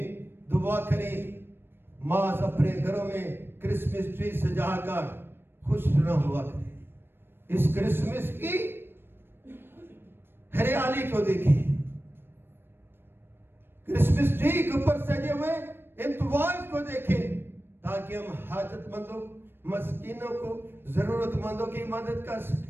दुआ करें, माँ अपने घरों में क्रिसमस ट्री सजाकर खुश न हुआ करें। इस क्रिसमस की हरियाली को देखें, क्रिसमस ट्री के ऊपर सजे हुए इंतवाज को देखें, ताकि हम हाजतमंदों, मस्कीनों को, जरूरतमंदों की मदद कर सकें।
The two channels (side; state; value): left; late; 0.10 ms